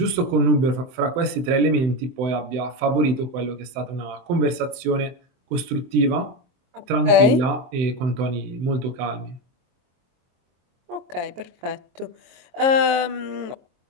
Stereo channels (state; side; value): late; left; 23 ms